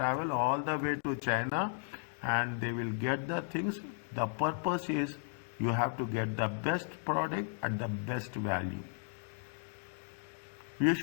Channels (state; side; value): silent; right; 54 dB below the other